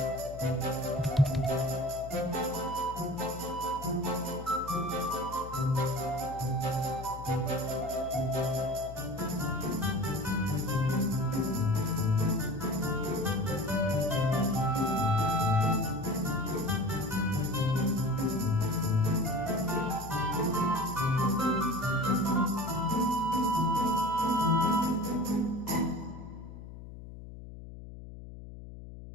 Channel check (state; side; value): noise; left; hum, 13 dB below the sound